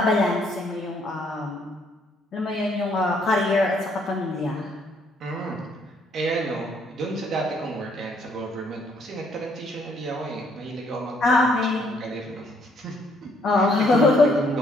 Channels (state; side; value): normal; both; correlation 0.68